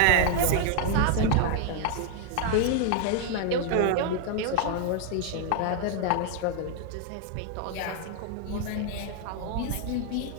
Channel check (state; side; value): different; both; correlation 0.00